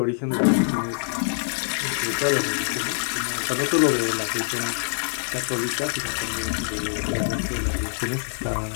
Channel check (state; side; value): silent; right; digital silence